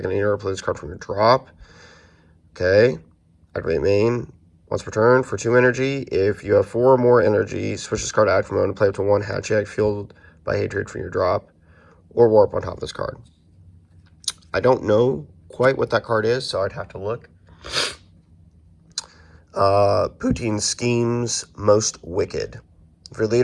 deck in any order, play this card from your drop. Okay. Activate main once per turn for 2 energy. If you have 4 or more energy, switch this card to active mode and play up to 1 Hatchet fueled by hatred from your drop, or warp on top of this card. I don't know quite what that card is, so I'd have to look. Poutine Schemes Most Wicked. If your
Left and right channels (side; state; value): both; identical; correlation 1.00